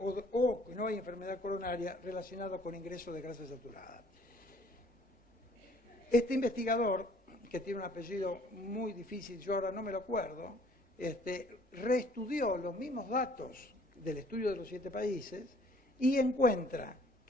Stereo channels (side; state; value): both; normal; correlation 0.58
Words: que no hay enfermedad coronaria relacionada con ingreso de grasa saturada. Este investigador, que tiene un apellido muy difícil, yo ahora no me lo acuerdo, reestudió los mismos datos del estudio de los 7 países y encuentra